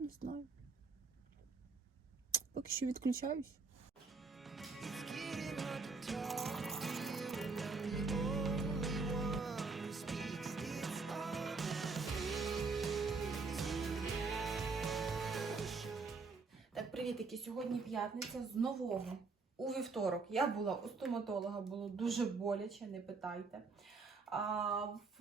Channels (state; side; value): quieter; left; 4.3 dB